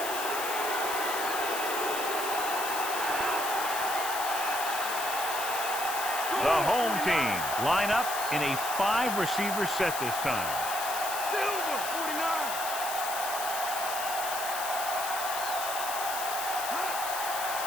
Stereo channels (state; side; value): noise; left; hiss, 5 dB below the sound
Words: The home team line up in a 5-receiver set this time.